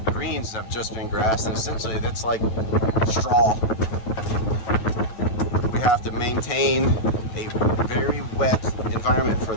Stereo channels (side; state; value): right; late; 9.1 ms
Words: greens have just been grassed, and essentially that's like straw. We have to maintain a very wet environment for